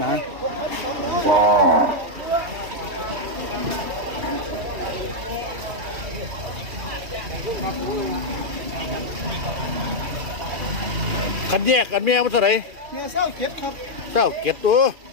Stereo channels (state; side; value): late; left; 2.6 ms